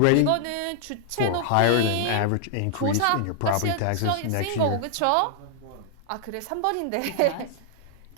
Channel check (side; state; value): both; different; correlation -0.01